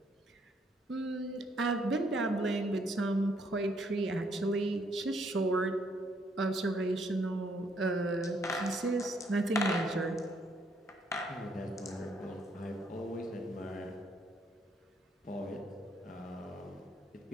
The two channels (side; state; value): both; normal; correlation 0.70